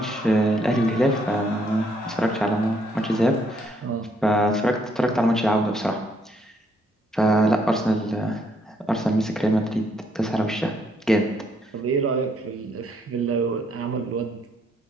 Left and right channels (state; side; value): normal; both; correlation 0.71